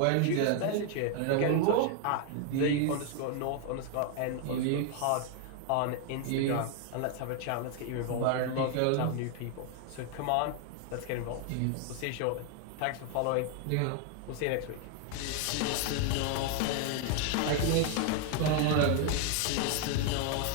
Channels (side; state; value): both; different; correlation 0.00